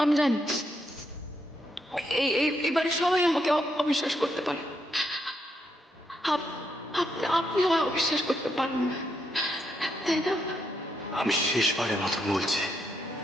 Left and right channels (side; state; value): both; normal; correlation 0.78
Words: আমি জানি এবারে সবাই আমাকে অবিশ্বাস করতে পারে। আপনি আমায় অবিশ্বাস করতে পারেন না, তাই না? আমি শেষবারের মতন বলছি,